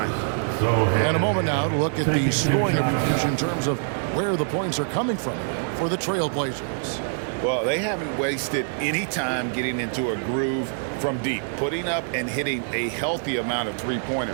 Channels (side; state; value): left; silent; digital silence